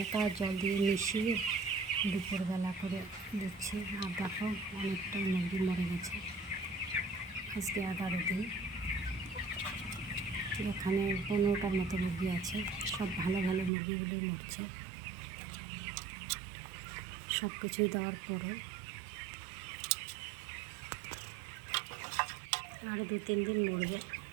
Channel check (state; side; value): drops out; left; at 13.7 s